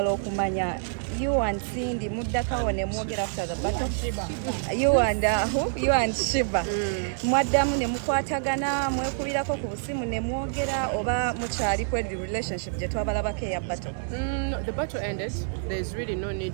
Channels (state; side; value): silent; left; 59 dB below the other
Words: okumanya you and Cindy muddakawo ne mwogera after the battle. You and Shiva mwaddamu ne mukwatagana mwekubirako ku busimu ne mwogera oba mukyali ku relationship gye twabalabako eya battle? The battle ended. There's really no